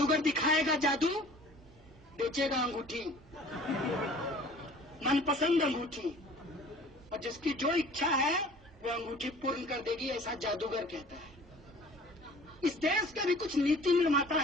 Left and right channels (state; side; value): normal; both; correlation 0.48